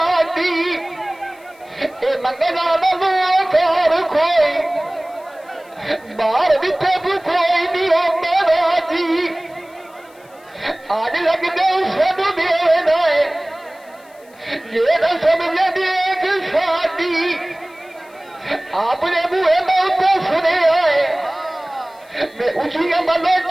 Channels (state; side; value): noise; left; hiss, 29 dB below the sound